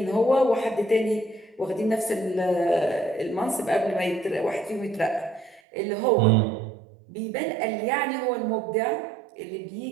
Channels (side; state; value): left; drops out; at 5.6 s